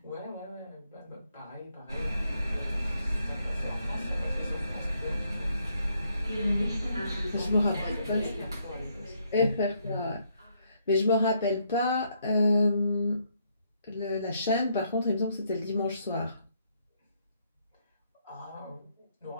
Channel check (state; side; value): inverted; both; correlation -0.73